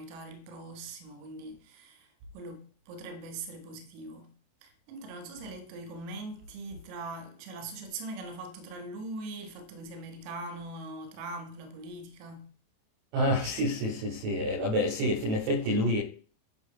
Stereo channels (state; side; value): late; left; 27 ms